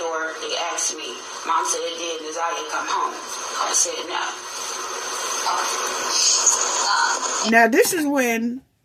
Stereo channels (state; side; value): identical; both; correlation 1.00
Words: they asked me. Mom said, did Naziah come home? I said, no. Now this is when